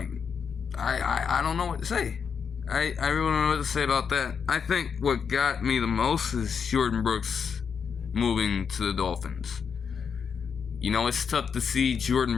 I don't know what to say. I really don't know what to say about that. I think what got me the most is Jordan Brooks moving to the Dolphins. You know, it's tough to see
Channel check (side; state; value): right; quieter; 6.5 dB